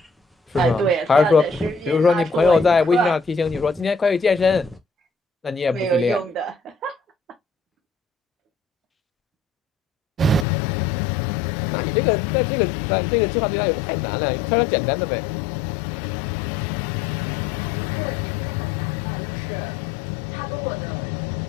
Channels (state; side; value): drops out; right; at 10.5 s